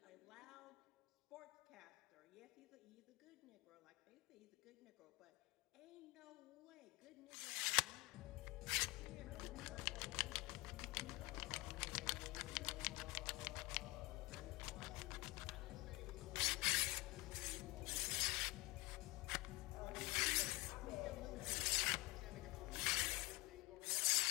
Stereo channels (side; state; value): right; quieter; 23.3 dB